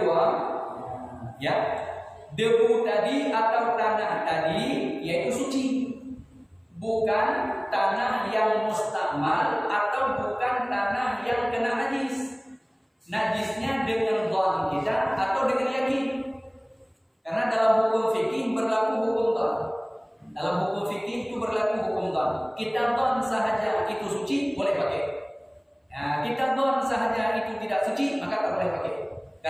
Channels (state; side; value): identical; both; correlation 1.00